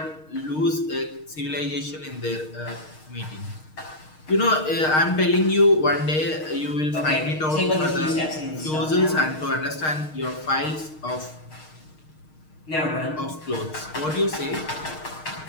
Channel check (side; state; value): right; late; 6.5 ms